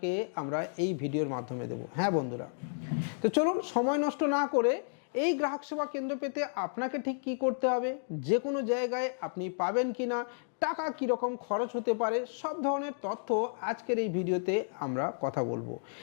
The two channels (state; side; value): silent; right; digital silence